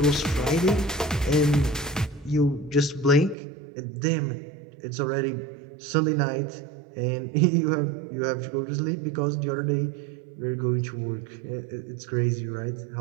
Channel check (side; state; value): left; drops out; at 3.4 s